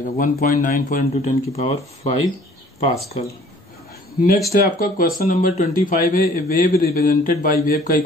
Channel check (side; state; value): both; normal; correlation 0.54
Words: 1.94 इंटू 10⁵ पास्कल। नेक्स्ट है आपका क्वेश्चन नंबर 25 है, a wave represented by wave का